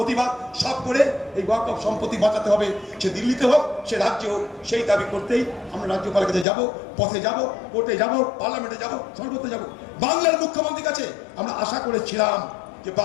সব করে এই ওয়াকফ সম্পত্তি বাঁচাতে হবে। সে দিল্লিতে হোক, সে রাজ্যে হোক, সেই দাবি করতেই আমরা রাজ্যপালের কাছে যাব, পথে যাব, কোর্টে যাব, পার্লামেন্টে যাব, সর্বত্র যাব। বাংলার মুখ্যমন্ত্রীর কাছে আমরা আশা করেছিলাম যে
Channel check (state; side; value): drops out; right; at 6.5 s